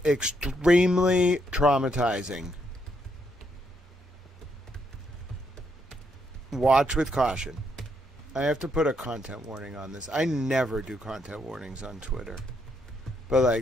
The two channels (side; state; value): both; normal; correlation 0.76